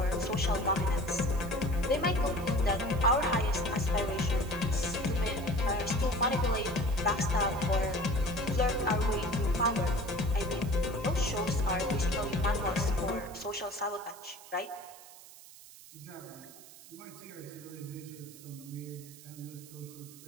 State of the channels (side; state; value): right; noise; hiss, 19 dB below the sound